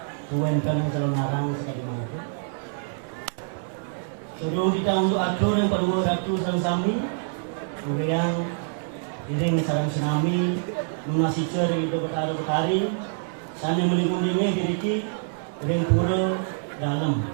kuwenten sareng sekali mangkin. Sebelum kita untuk atur yang perlu ratu sareng sami, kemudian dereng sareng sami munasicer itu betari sana melingung-lingung diki dereng pura dalam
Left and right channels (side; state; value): left; silent; 61 dB below the other